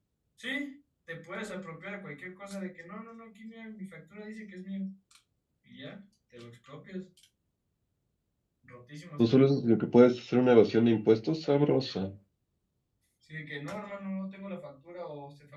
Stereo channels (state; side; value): identical; both; correlation 1.00